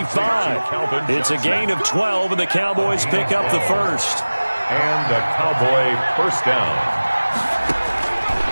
It's a gain of 12, and the Cowboys pick up the first. And a Cowboy first down.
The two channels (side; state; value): both; inverted; correlation -1.00